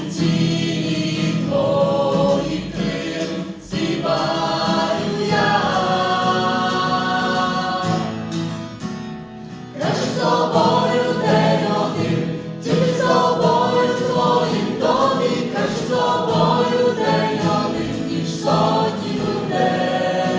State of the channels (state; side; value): identical; both; correlation 1.00